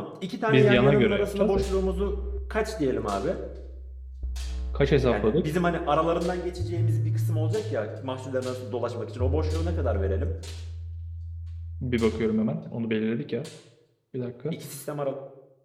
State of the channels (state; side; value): identical; both; correlation 1.00